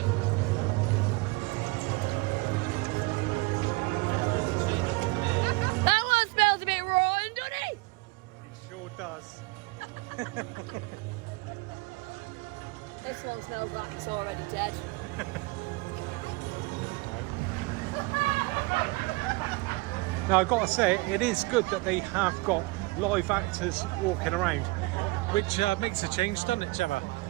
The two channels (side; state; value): left; quieter; 24.4 dB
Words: That one smells a bit rotten, doesn't it? It sure does. This one smells like it's already dead. Now I've got to say, it is good that they have got live actors walking around, which makes a change, doesn't it, Gemma?